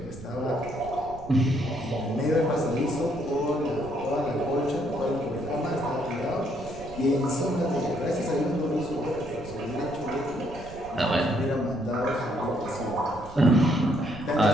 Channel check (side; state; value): right; noise; rumble, 16 dB below the sound